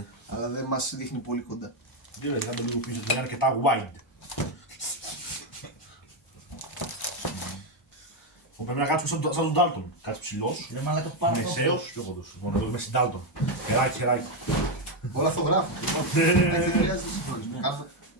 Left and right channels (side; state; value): both; normal; correlation 0.05